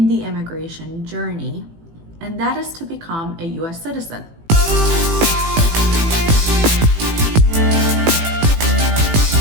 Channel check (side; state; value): left; late; 18 ms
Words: the immigration journey, and that is to become a US citizen.